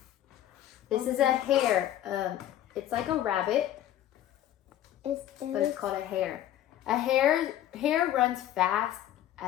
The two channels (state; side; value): quieter; right; 12.3 dB